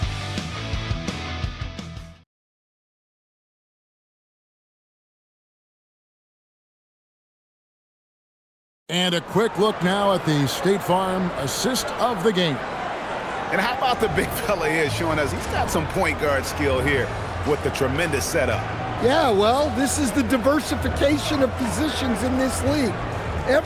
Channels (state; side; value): identical; both; correlation 1.00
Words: And a quick look now at the State Farm assist of the game. And how about the big fella here showing us he's got some point guard skill here with the tremendous setup. Yeah, well, this is the diversification of positions in this league.